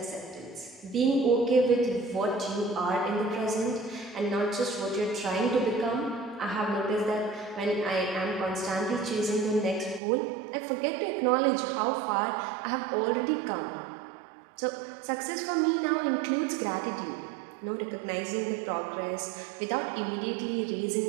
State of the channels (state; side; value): drops out; left; at 10.0 s